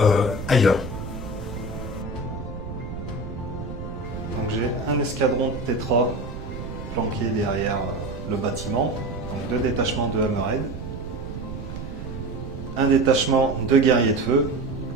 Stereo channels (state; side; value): noise; right; rumble, 9 dB below the sound